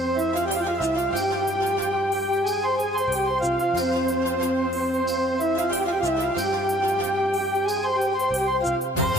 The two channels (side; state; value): both; normal; correlation 0.61